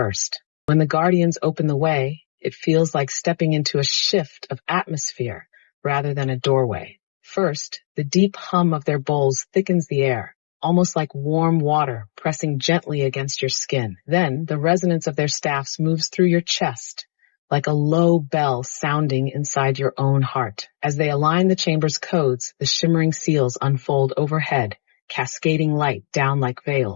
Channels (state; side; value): silent; right; digital silence